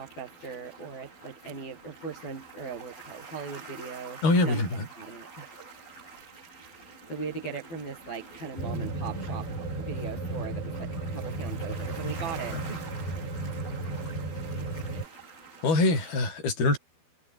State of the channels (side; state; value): right; late; 12 ms